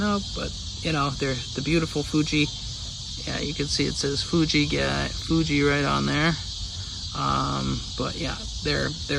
but they're the beautiful Fuji. Yeah, you can see it says Fuji right on there. But yeah, they're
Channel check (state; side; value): identical; both; correlation 1.00